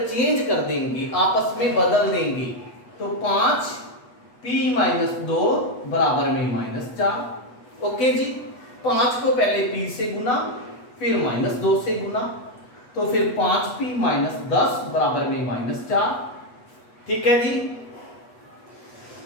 कर देंगे, आपस में बदल देंगे, तो 5p-2 बराबर में -4। ओके जी, 5 को पहले p से गुना, फिर -2 से गुना, तो फिर 5p-10 बराबर में -4, ठीक है जी।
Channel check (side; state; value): right; late; 8.2 ms